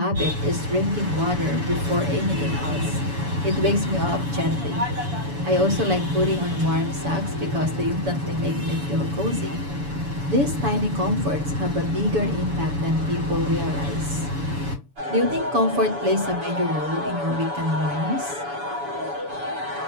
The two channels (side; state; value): left; late; 7.0 ms